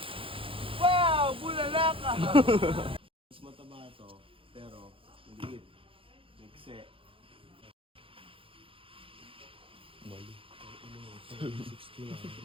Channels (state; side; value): late; left; 0.26 ms